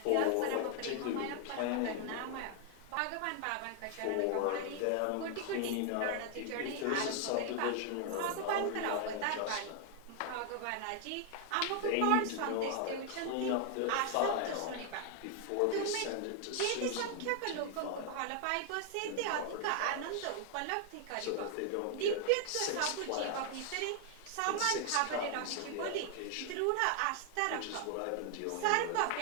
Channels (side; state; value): both; different; correlation 0.00